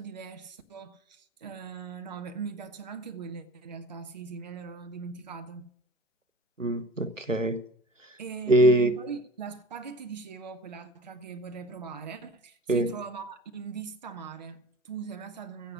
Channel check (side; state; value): both; normal; correlation 0.40